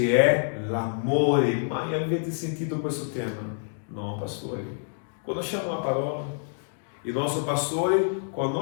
è l'amore. Mai avete sentito questo tema? No, pastore. Conosciamo la parola. Il nostro pastore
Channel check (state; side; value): silent; right; digital silence